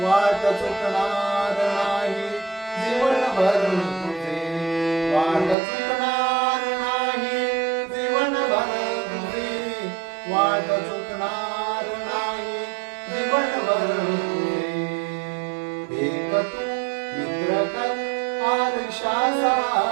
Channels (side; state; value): left; drops out; at 5.6 s